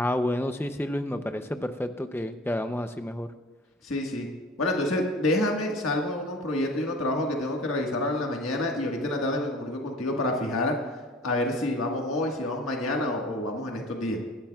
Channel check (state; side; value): normal; both; correlation 0.44